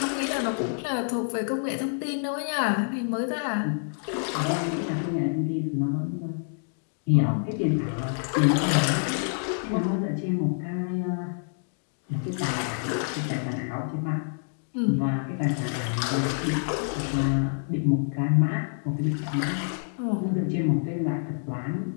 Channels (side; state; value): right; silent; digital silence